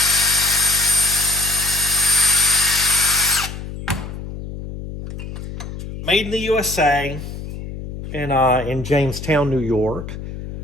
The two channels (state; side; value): noise; left; hum, 9 dB below the sound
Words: Made in the USA in Jamestown, New York.